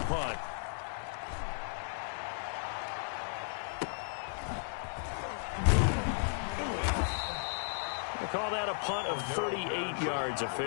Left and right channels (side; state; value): right; silent; digital silence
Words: Call that a punt of 38 yards